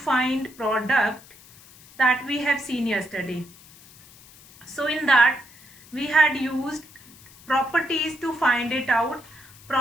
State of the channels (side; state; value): left; noise; hiss, 23 dB below the sound